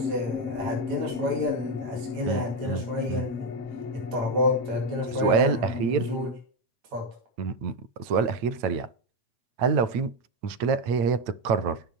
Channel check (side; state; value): left; late; 9.0 ms